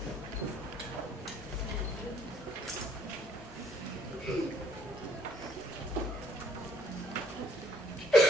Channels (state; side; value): normal; both; correlation 0.63